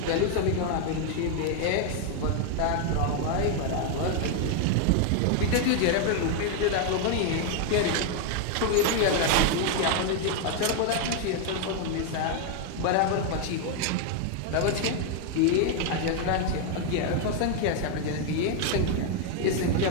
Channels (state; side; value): different; both; correlation 0.00